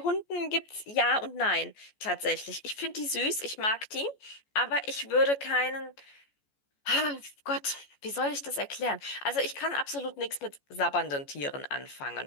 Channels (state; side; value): late; right; 14 ms